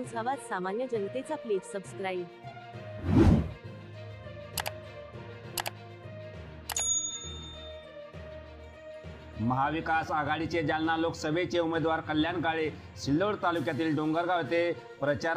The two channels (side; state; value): both; identical; correlation 1.00